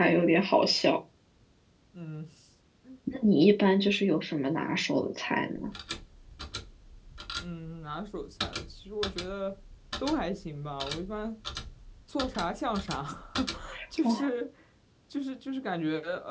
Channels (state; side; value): identical; both; correlation 1.00